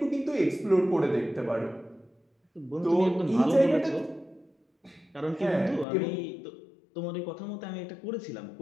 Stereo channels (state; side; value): drops out; right; at 5.9 s